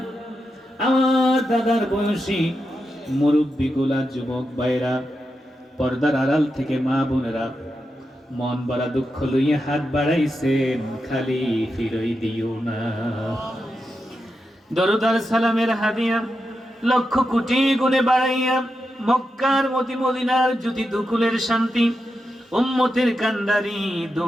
আমার দাদার বয়সী মুরব্বীগুলা, যুবক ভাইরা, পর্দার আড়াল থেকে মা বোনেরা মন বড়া দুঃখ লইয়া হাত বাড়াইছেন, খালি ফিরই দিও না। দরুদ আর সালামের হাদিয়া লক্ষ কোটি গুণে বাড়াইয়া মক্কার মদিনার জ্যোতি দুকুলের শান্তি উম্মতের কান্ডারি দো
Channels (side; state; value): both; normal; correlation 0.88